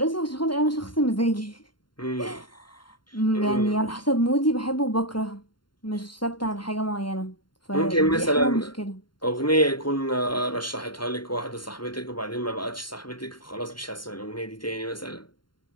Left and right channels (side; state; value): right; late; 0.72 ms